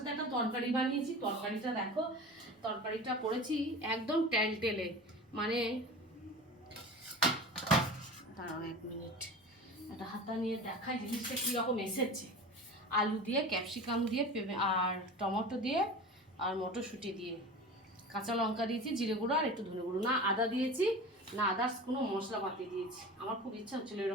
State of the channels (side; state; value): both; normal; correlation 0.34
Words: একটা তরকারি বানিয়েছি। তরকারিটা দেখো, তরকারিটা করেছি একদম টেলটেলে, মানে দাঁড়াও 1 মিনিট, একটা হাতা নিয়ে দেখাই জিনিসটা কীরকম এসেছে। আলু দিয়ে, ক্যাপসিকাম দিয়ে, আর টমেটো দিয়ে, আর মটরশুঁটি দিয়ে, কাঁচা লঙ্কা দিয়েছি, জিরে গুঁড়ো আর একটু ধনে গুঁড়ো, না আদা দিয়েছি না আদার্স কোনো মশলাপাতি দিয়েছি। আমার খুব ইচ্ছা হচ্ছিলো